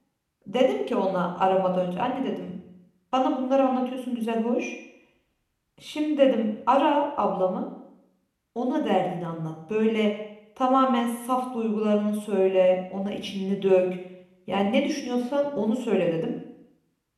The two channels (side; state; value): both; identical; correlation 1.00